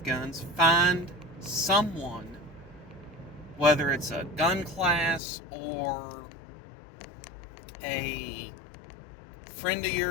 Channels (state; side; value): drops out; right; at 5.2 s